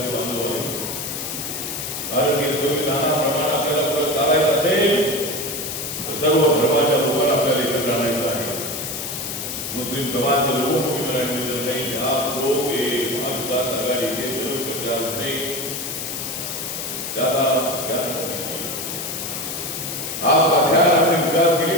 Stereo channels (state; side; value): noise; left; hiss, 5 dB below the sound